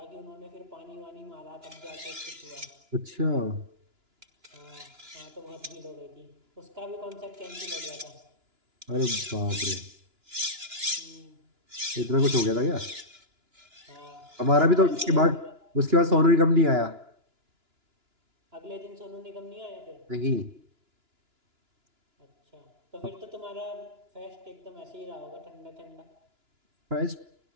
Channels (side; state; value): left; late; 2.9 ms